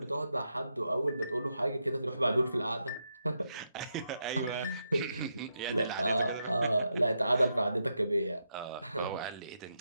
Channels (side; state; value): both; inverted; correlation -0.84